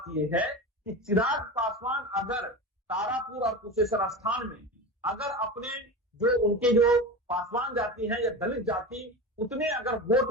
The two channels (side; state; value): both; normal; correlation 0.26